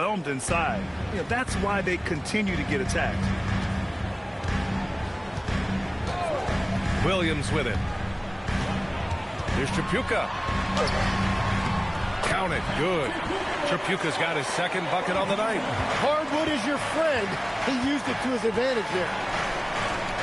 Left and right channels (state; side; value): identical; both; correlation 1.00